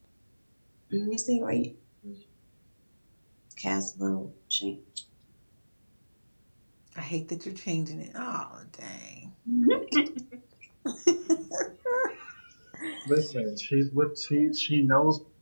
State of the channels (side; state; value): both; inverted; correlation -1.00